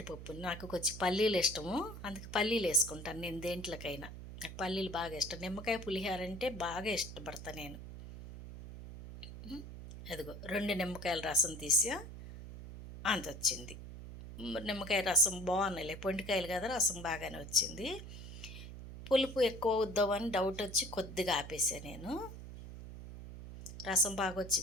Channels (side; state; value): right; noise; hum, 11 dB below the sound